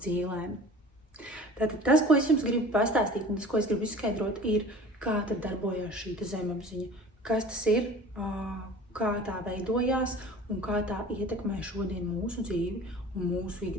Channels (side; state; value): both; normal; correlation 0.42